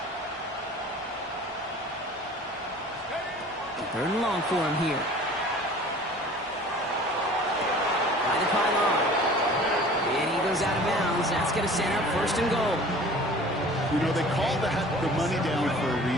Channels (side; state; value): both; normal; correlation 0.45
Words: Third and long for him here. By the pylon. And he goes out of bounds. That's going to set up first and goal. You know, they call that the money down for a